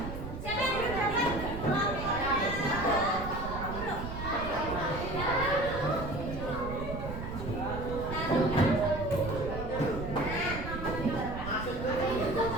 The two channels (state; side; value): noise; right; rumble, 7 dB below the sound